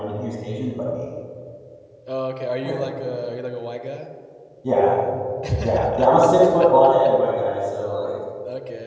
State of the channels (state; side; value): identical; both; correlation 1.00